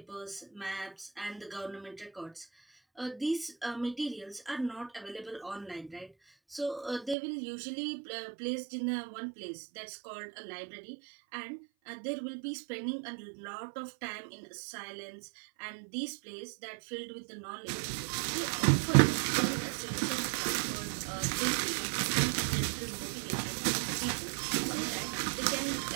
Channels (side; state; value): left; drops out; at 7.2 s